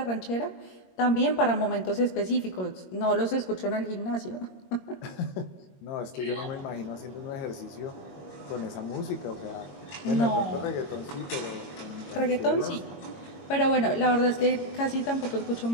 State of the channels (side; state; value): right; late; 22 ms